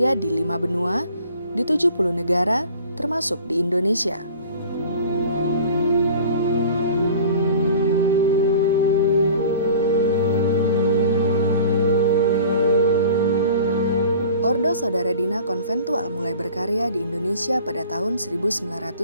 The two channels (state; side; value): inverted; both; correlation -0.45